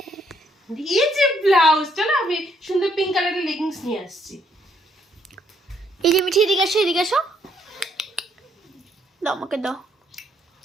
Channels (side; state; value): both; normal; correlation 0.70